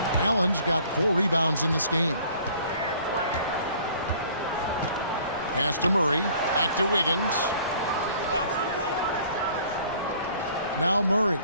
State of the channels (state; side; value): inverted; both; correlation -0.54